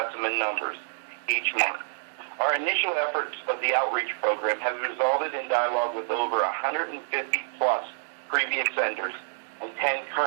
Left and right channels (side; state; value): left; silent; digital silence